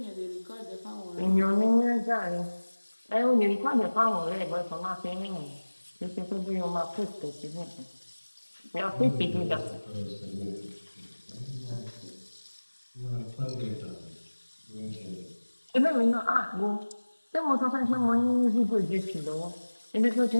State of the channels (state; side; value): inverted; both; correlation -1.00